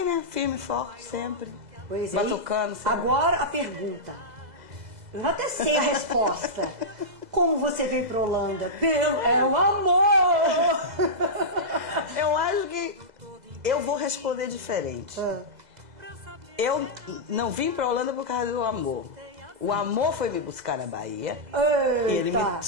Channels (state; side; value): late; left; 2.0 ms